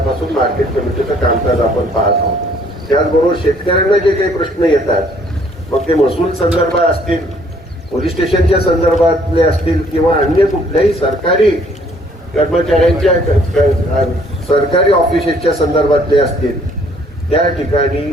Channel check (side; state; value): both; normal; correlation 0.62